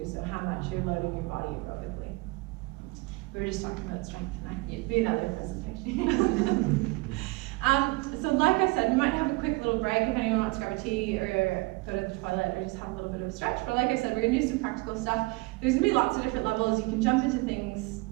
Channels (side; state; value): left; quieter; 24.7 dB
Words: So how much you're loading your body aerobically. We were just talking about strength tonight. It'd be another presentation. So like I said, we might have a quick little break if anyone wants to grab a tea or go to the toilet or just have a little bit of a stretch. But like I said, we're gonna do some practical stuff. There's gonna be lots of different levels. You can jump into things